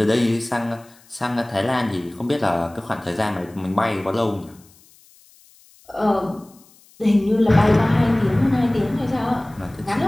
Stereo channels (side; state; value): left; noise; hiss, 28 dB below the sound